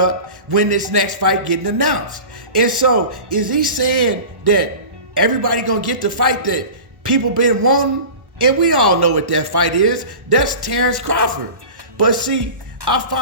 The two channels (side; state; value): left; late; 1.1 ms